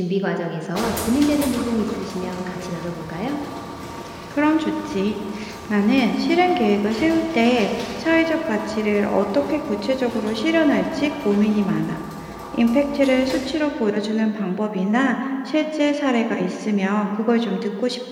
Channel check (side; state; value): both; identical; correlation 1.00